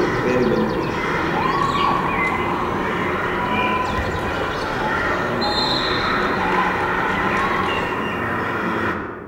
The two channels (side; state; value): both; identical; correlation 1.00